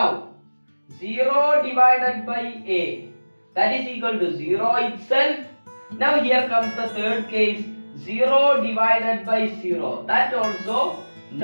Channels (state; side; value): inverted; both; correlation -1.00